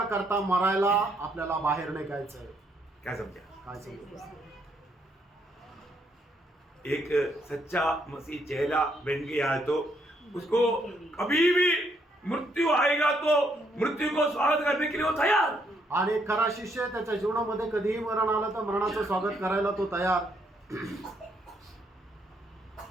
करता मरायला आपल्याला बाहेर निघायचंय. क्या समझा? काय समजलं? एक सच्चा मसीह चेला बन गया है तो उसको कभी भी मृत्यु आएगा तो मृत्यु को स्वागत करने के लिए वो तैयार. आणि एक खरा शिष्य त्याच्या जीवनामध्ये कधीही मरण आलं तर मरणाचं स्वागत करायला तो तयार.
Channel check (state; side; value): normal; both; correlation 0.73